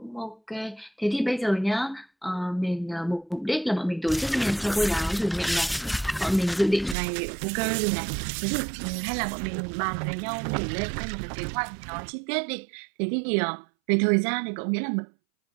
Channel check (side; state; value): left; drops out; at 7.0 s